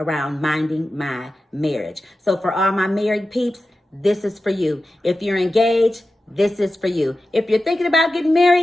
minding my marriage. So for all my married peeps, this is for you. If you're engaged, this is for you. If you're thinking about getting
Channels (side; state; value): both; normal; correlation 0.93